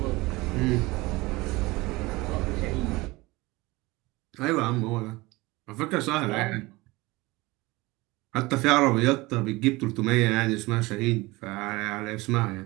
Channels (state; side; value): quieter; left; 21.8 dB